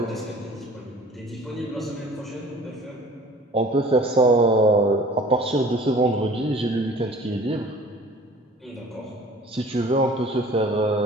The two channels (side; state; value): both; normal; correlation 0.48